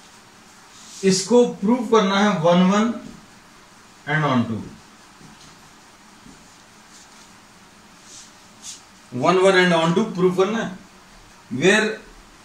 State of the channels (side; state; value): both; identical; correlation 1.00